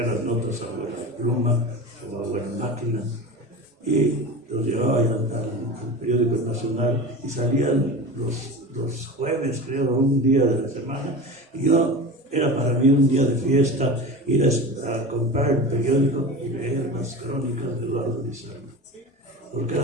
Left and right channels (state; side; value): normal; both; correlation 0.30